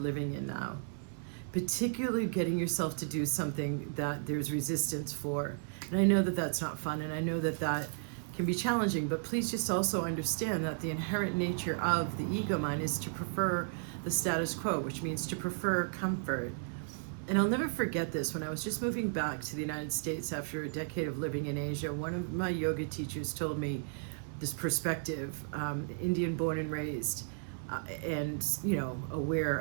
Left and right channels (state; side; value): silent; left; 55 dB below the other